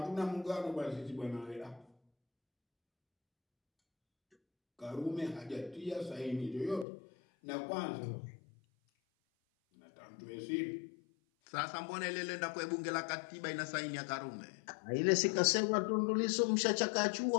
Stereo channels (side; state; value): right; drops out; at 6.9 s